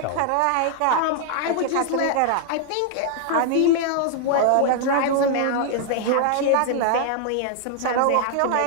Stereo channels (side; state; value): both; different; correlation 0.00